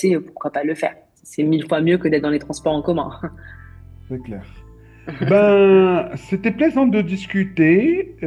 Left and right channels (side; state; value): both; identical; correlation 1.00